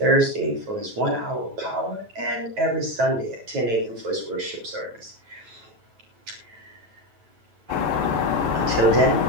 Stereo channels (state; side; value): late; left; 9.1 ms